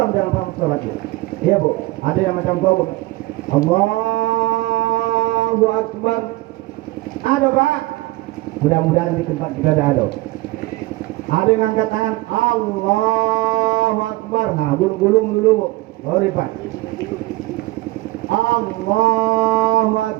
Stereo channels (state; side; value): quieter; left; 19.5 dB